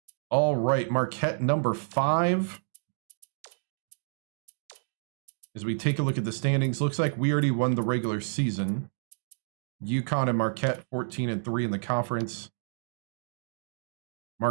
All right, Marquette number 5. As we take a look at the standings, looks like we already won the regular season. UConn and Marquette 14-3 in the conference.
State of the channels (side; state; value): left; silent; digital silence